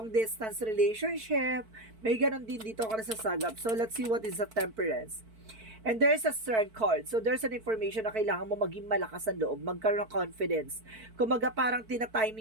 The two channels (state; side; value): late; left; 4.5 ms